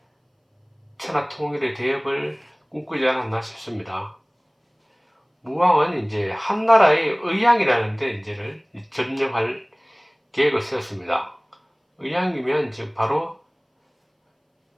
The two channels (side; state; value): both; identical; correlation 1.00